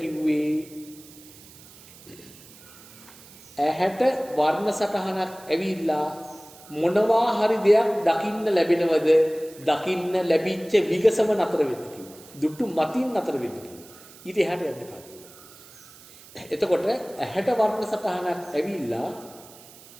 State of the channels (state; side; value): noise; right; hiss, 21 dB below the sound